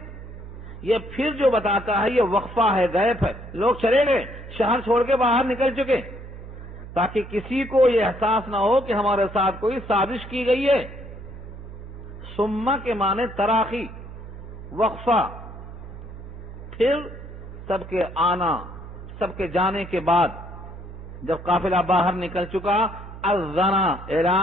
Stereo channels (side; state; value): right; noise; hum, 13 dB below the sound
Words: یہ پھر جو بتاتا ہے یہ وقفہ ہے، غیب ہے، لوگ چلے گئے، شہر چھوڑ کے باہر نکل چکے، تاکہ کسی کو یہ احساس نہ ہو کہ ہمارے ساتھ کوئی سازش کی گئی ہے۔ ثم کے معنی تراخی، وقفہ، پھر سب کے آنا، سب کے جانے کے بعد جب قافلہ باہر نکل چکا، اذن